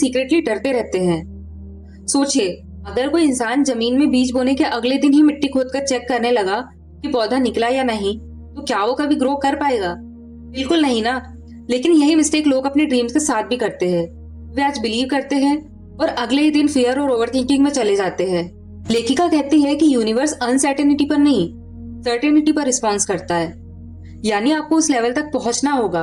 डरते रहते हैं। सोचिए, अगर कोई इंसान जमीन में बीज बोने के अगले दिन ही मिट्टी खोदकर चेक करने लगा कि पौधा निकला या नहीं, तो क्या वो कभी ग्रो कर पाएगा? बिल्कुल नहीं ना। लेकिन यही मिस्टेक लोग अपने ड्रीम्स के साथ भी करते हैं। वे आज बिलीव करते हैं और अगले ही दिन फियर और ओवरथिंकिंग में चले जाते हैं। लेखिका कहती है कि यूनिवर्स अनसर्टेनिटी पर नहीं, सर्टेनिटी पर रिस्पॉन्स करता है। यानी आपको उस लेवल तक पहुंचना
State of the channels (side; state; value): both; identical; correlation 1.00